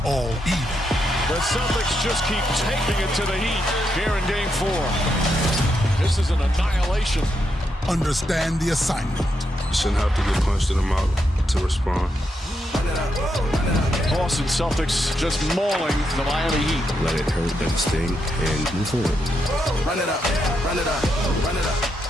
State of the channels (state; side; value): normal; both; correlation 0.82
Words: all even. The Celtics just keep taking it to the Heat here in Game 4. This is an annihilation. Understand the assignment. You shouldn't have to get punched in the mouth to respond. Boston Celtics just mauling the Miami Heat. Let it hurt, let it sting, and move forward. Run it up, run it up, run it up.